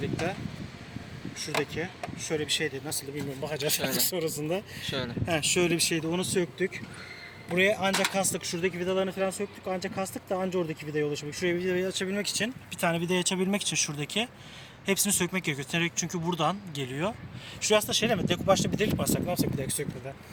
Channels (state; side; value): identical; both; correlation 1.00